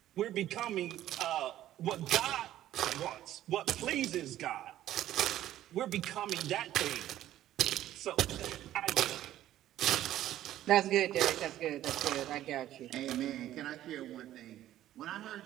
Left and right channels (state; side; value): quieter; left; 13.1 dB